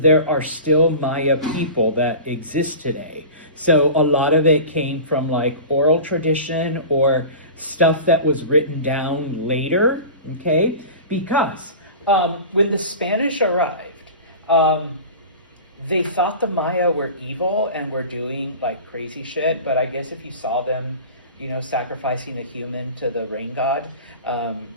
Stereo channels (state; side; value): inverted; both; correlation -0.34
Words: there are still Maya people that exist today. So a lot of it came from oral tradition or stuff that was written down later, okay? Because when the Spanish arrived, they thought the Maya were evil and were doing crazy shit, but I guess if you saw them, sacrificing a human to the rain god,